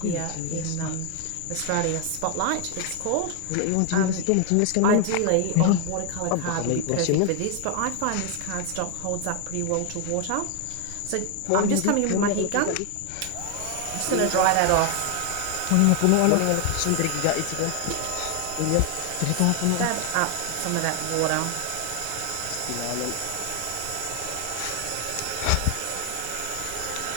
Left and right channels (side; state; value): both; different; correlation 0.00